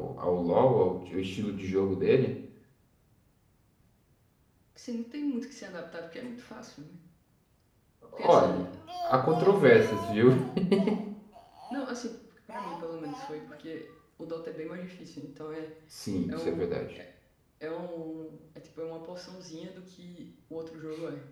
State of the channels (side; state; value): both; identical; correlation 1.00